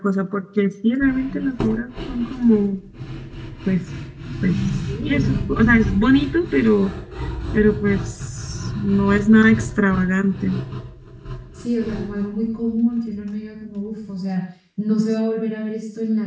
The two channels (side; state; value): both; identical; correlation 1.00